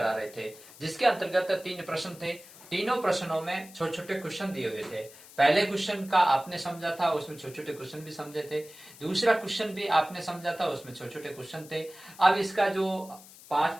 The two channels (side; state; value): left; noise; hiss, 20 dB below the sound